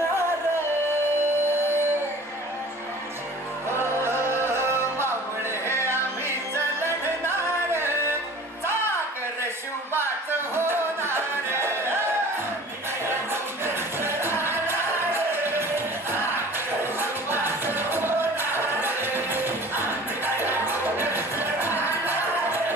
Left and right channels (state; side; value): normal; both; correlation 0.44